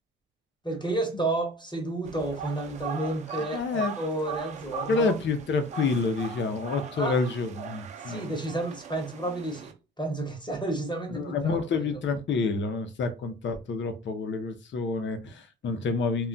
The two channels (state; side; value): normal; both; correlation 0.43